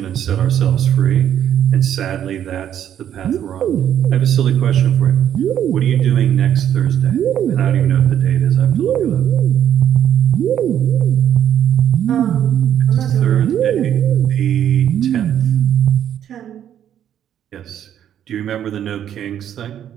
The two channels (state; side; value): quieter; left; 10.1 dB